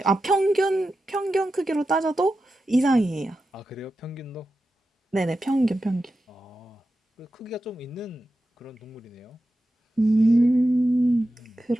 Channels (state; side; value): normal; both; correlation 0.91